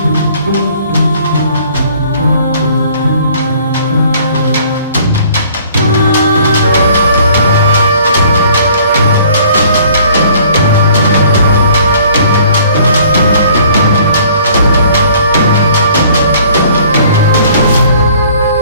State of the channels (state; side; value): inverted; both; correlation -0.56